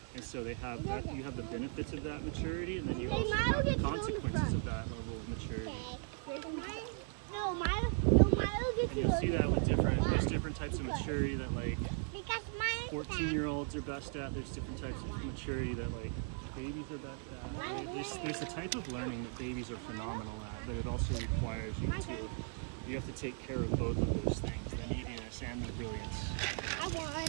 And so they have that, you have the benefits of that maturity, and then you also have the consequences of that level of maturity. And you'll see that with there's different types of maturity that like 14-year-olds are best at. There's different types of maturity that like babies are best at. There's a type of learning that babies are phenomenal at, but it also requires you have to take care of both of those things, the neediness and the brilliance.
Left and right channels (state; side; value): silent; left; 53 dB below the other